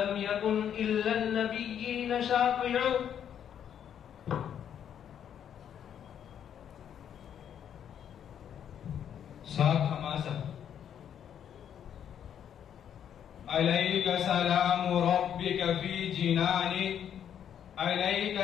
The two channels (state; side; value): quieter; right; 9.1 dB